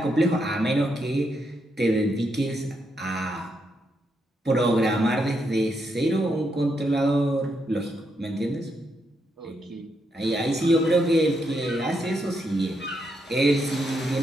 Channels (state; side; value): normal; both; correlation 0.80